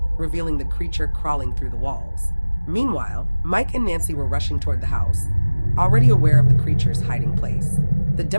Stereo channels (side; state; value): both; inverted; correlation -1.00